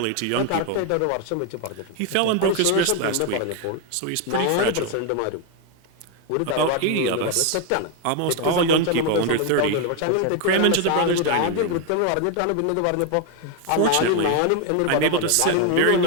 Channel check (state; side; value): different; both; correlation 0.01